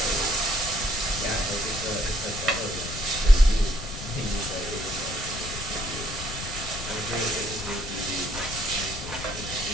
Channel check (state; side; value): noise; left; rumble, 9 dB below the sound